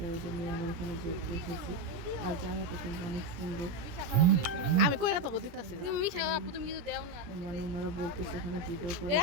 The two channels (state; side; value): late; left; 17 ms